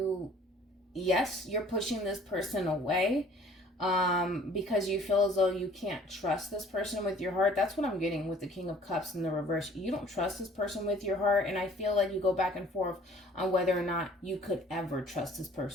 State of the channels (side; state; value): both; normal; correlation 0.54